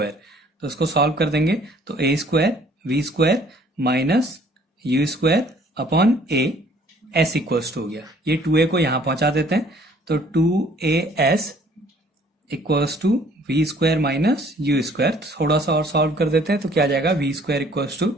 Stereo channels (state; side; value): normal; both; correlation 0.58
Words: तो इसको सॉल्व कर देंगे तो a square v square minus u square upon a s equals to हो गया, ये 2a को यहां पहुंचा देते हैं, तो 2as equals to v square minus u square. थोड़ा सा और सॉल्व कर देते हैं तो क्या आ जाएगा, v square equals to